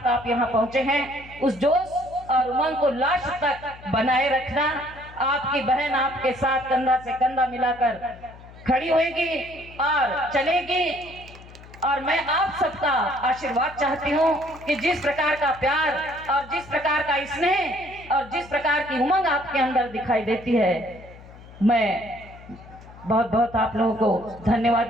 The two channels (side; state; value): left; noise; hum, 19 dB below the sound